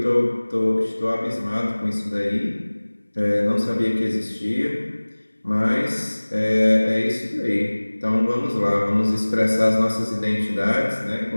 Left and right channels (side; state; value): both; inverted; correlation -1.00